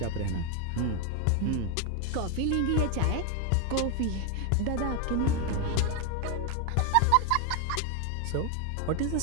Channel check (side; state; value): both; different; correlation 0.01